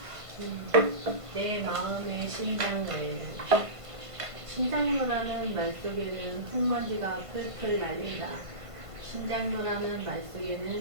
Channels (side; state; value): left; late; 1.5 ms